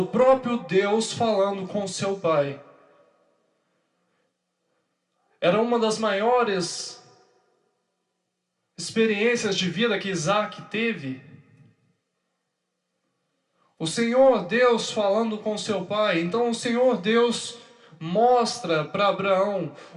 próprio Deus falando com seu pai. Era uma das maiores experiências de vida que Isaque teve. O Senhor Deus falando com seu pai. Então o Senhor Deus mostra para Abraão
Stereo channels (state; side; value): identical; both; correlation 1.00